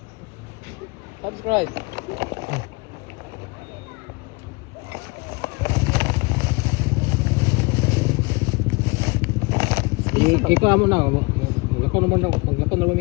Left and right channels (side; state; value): right; quieter; 27.3 dB